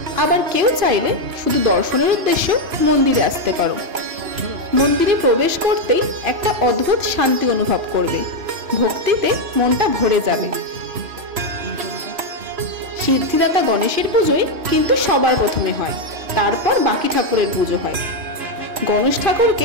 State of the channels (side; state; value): left; late; 3.0 ms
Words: আবার কেউ চাইলে শুধু দর্শনের উদ্দেশ্যে মন্দিরে আসতে পারো। মন্দিরে প্রবেশ করতেই একটা অদ্ভুত শান্তি অনুভব করবে, ভক্তিতে মনটা ভরে যাবে। সিদ্ধিদাতা গণেশের পুজোই কিন্তু সবার প্রথমে হয়, তারপর বাকি ঠাকুরের পুজো হয়। গণেশ